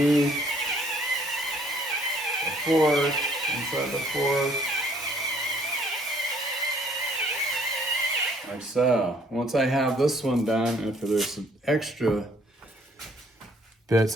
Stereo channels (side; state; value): both; normal; correlation 0.62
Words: the fork, inside the fork. Like so. Once I have this one done, if there's some extra